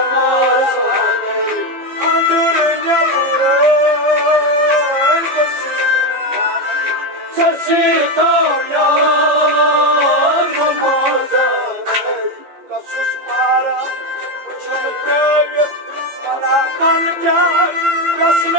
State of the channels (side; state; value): left; late; 15 ms